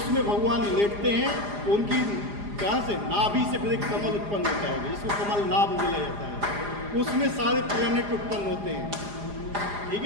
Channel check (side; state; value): left; late; 4.9 ms